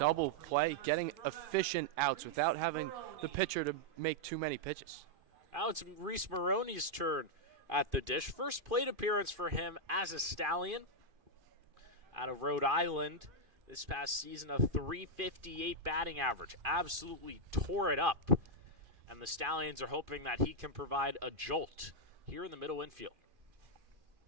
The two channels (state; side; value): late; left; 2.5 ms